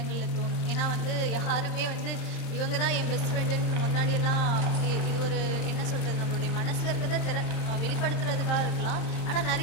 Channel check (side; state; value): right; late; 27 ms